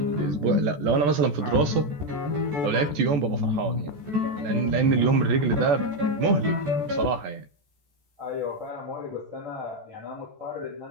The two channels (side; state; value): left; late; 14 ms